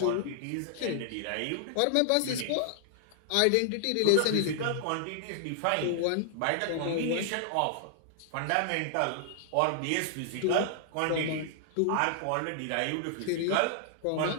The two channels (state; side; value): different; both; correlation -0.01